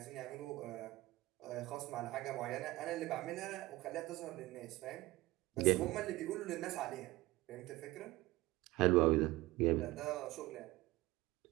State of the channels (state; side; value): quieter; left; 18.9 dB